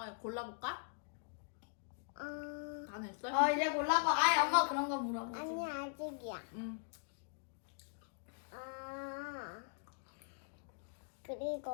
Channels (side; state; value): right; silent; digital silence